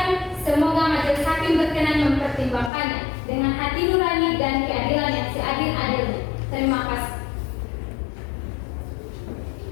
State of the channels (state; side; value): drops out; right; at 2.7 s